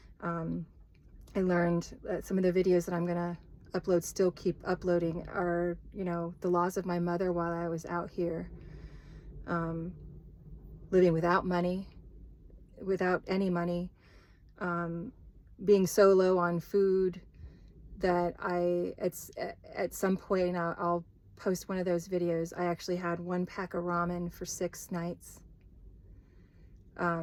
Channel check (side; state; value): both; identical; correlation 1.00